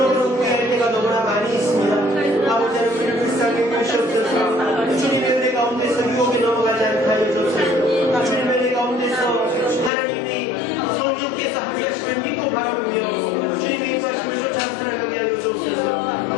후회할 때가 너무나 많이 있습니다. 아버지 하나님 우리를 불쌍히 여기시옵소서. 주님의 은혜 가운데서 유혹에 넘어가지 않게 하여 주옵소서. 주님의 은혜 가운데서 하나님이 성령께서 함께하시는 믿고 바라보며 주님의 인가심을 쫓아 살아가게 하여 주옵소서.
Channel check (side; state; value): right; drops out; at 9.9 s